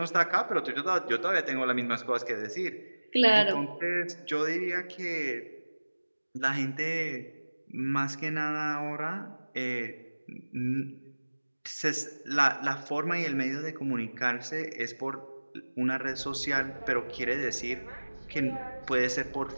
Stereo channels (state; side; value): inverted; both; correlation -1.00